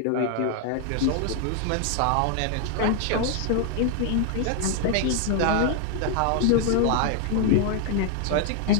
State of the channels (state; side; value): different; both; correlation 0.00